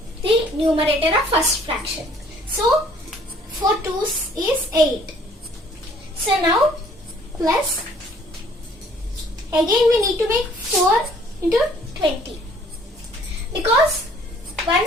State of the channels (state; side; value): normal; both; correlation 0.58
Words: the numerator of first fraction. So 4 2's is 8. So now plus, again we need to make 4 into 20 because